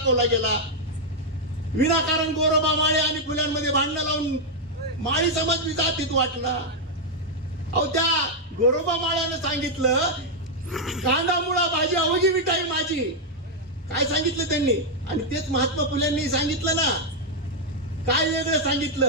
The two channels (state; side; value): normal; both; correlation -0.02